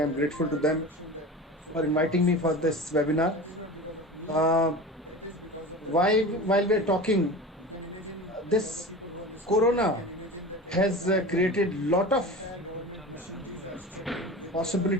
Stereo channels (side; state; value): both; normal; correlation 0.32